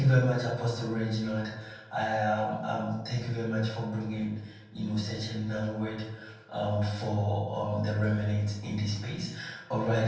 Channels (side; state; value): both; identical; correlation 1.00